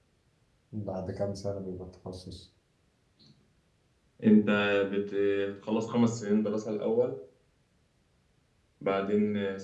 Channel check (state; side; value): identical; both; correlation 1.00